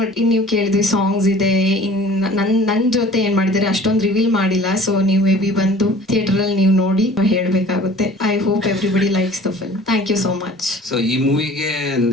ನೀವು ಕೇಳಿದ್ವಿ, ಸಾಂಗ್ಸ್ ಇದೆ, ನನ್ ಜೊತೆ ಏನ್ ಮಾಡಿದ್ದಾರೆ ಅಷ್ಟೊಂದು ರಿವೀಲ್ ಮಾಡಿಲ್ಲ. ಸೊ ನೀವು ಮೇ ಬಿ ಬಂದು ಥಿಯೇಟರ್ ಅಲ್ಲಿ ನೀವು ನೋಡಿ ಹೇಳ್ಬೇಕಾಗುತ್ತೆ. I hope everybody likes the film. Thank you so much. So ಈ ಮೂವಿಗೆ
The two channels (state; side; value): normal; both; correlation 0.47